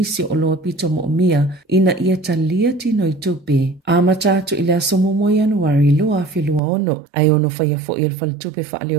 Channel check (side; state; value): left; drops out; at 6.6 s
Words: o loa pito mo mia ina ia talia tino i tupe. A matatu ila somo mo Januari loa awhilua ono ai ono whaia fo i whale tupe whaale